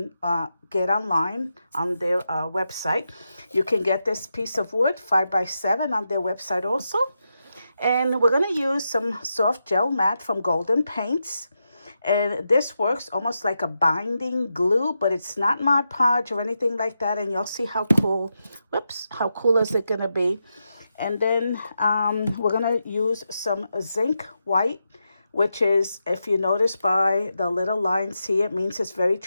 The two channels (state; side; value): inverted; both; correlation -0.87